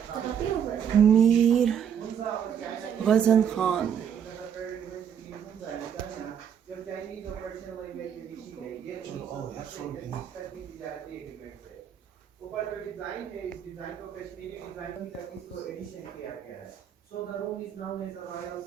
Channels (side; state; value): left; quieter; 8.4 dB